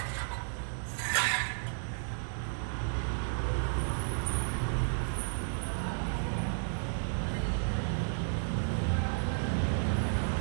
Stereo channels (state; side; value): silent; left; digital silence